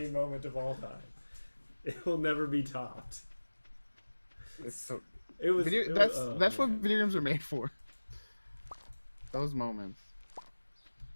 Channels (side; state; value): both; inverted; correlation -1.00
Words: moment of all time. It will never be topped. It's so. It was. That's what man. video games are made for. Those moments.